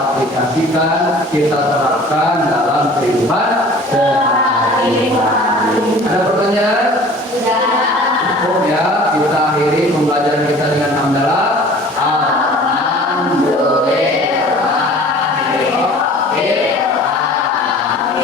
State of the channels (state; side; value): normal; both; correlation 0.46